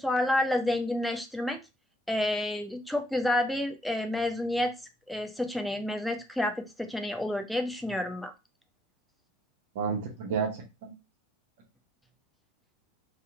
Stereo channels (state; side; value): normal; both; correlation 0.72